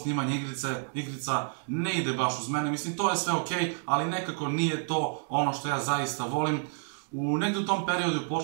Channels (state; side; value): silent; left; digital silence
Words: igrica ne ide baš uz mene, mislim to je sve okej, ali nekako nije to ono što ja zaista volim. Negdje u tom periodu